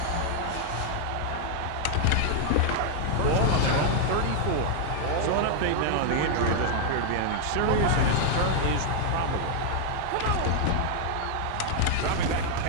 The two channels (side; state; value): both; different; correlation 0.00